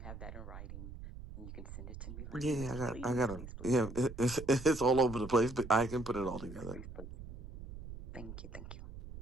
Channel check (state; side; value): noise; right; rumble, 12 dB below the sound